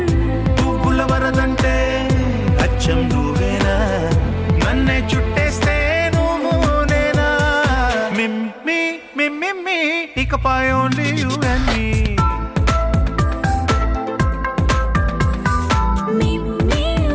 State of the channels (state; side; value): identical; both; correlation 1.00